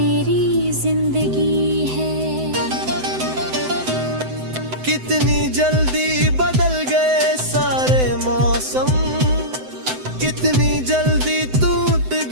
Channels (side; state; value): left; late; 7.9 ms